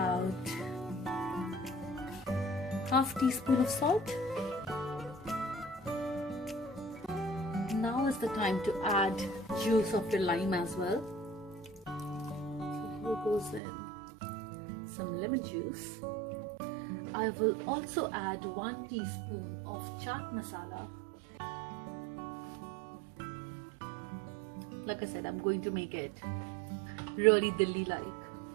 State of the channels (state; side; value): drops out; left; at 13.6 s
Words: half teaspoon of salt. Now is the time to add juice of your lime as well. So here goes in some lemon juice. I will also add 1 teaspoon of chaat masala. Like I said, I'm going to make it really Delhi-like.